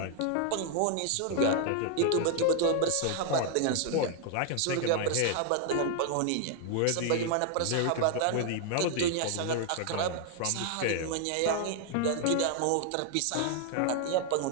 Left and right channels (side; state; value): both; different; correlation 0.00